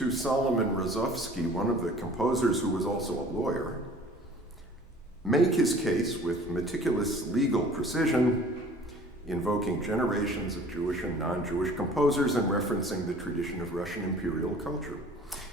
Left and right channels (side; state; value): both; normal; correlation 0.48